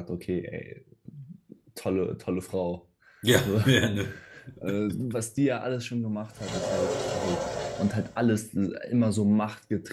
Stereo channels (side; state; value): both; identical; correlation 1.00